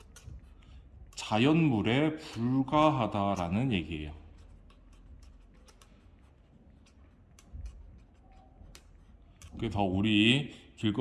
자연물에 불과하다라는 얘기예요. 그래서 우리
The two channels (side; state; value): both; identical; correlation 1.00